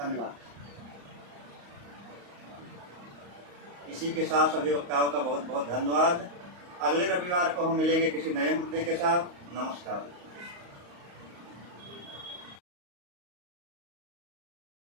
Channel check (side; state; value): left; late; 35 ms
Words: इसी के साथ सभी वक्ताओं का बहुत बहुत धन्यवाद। अगले रविवार को हम मिलेंगे किसी नए मुद्दे के साथ। नमस्कार।